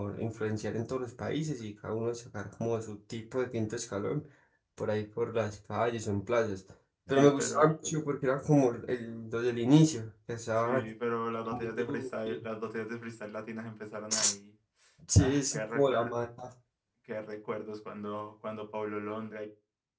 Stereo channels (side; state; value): both; identical; correlation 1.00